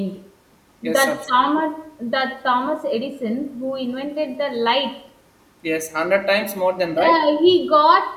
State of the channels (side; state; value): both; identical; correlation 1.00